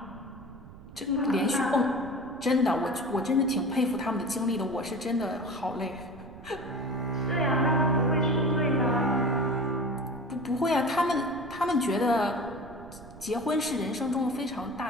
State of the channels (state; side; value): noise; right; rumble, 18 dB below the sound